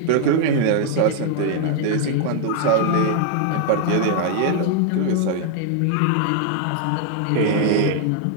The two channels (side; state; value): both; different; correlation 0.00